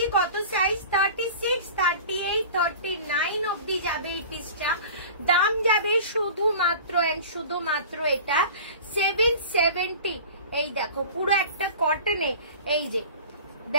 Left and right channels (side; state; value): both; inverted; correlation -0.39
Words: কত সাইজ, 36, 38, 39 অব্দি যাবে এই পিসটা। দাম যাবে শুধুমাত্র এটা 770। এই দেখো পুরো একটা কটনে, এই যে